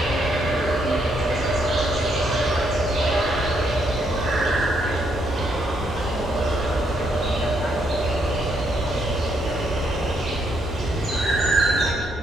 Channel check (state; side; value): normal; both; correlation 0.74